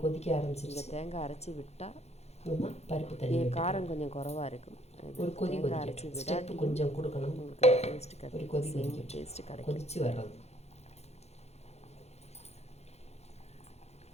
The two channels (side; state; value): right; late; 0.31 ms